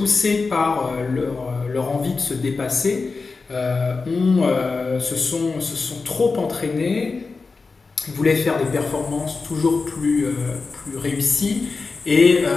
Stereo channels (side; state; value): right; quieter; 4.3 dB